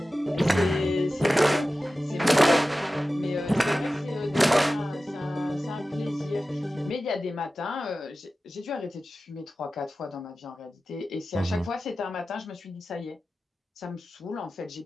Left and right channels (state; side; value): normal; both; correlation 0.95